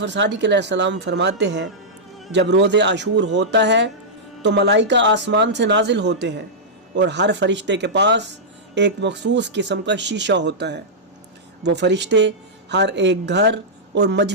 सादिक अलैहिस्सलाम फरमाते हैं, जब रोज़े आशूर होता है तो मलाइका आसमान से नाजिल होते हैं और हर फरिश्ते के पास एक मखसूस किस्म का शीशा होता है। वो फरिश्ते हर एक घर और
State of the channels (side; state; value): both; normal; correlation -0.10